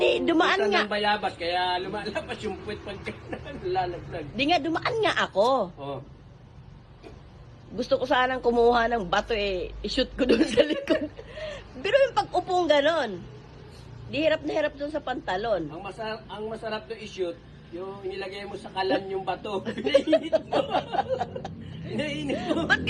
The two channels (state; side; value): identical; both; correlation 1.00